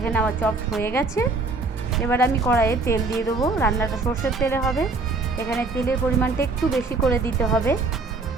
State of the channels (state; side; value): quieter; left; 3.7 dB